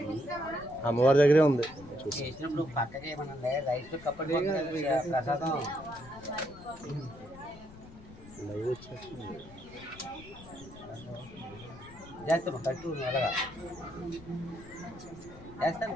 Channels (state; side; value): noise; left; rumble, 18 dB below the sound